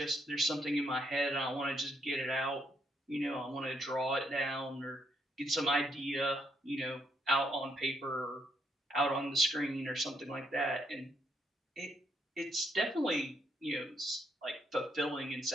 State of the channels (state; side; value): normal; both; correlation 0.75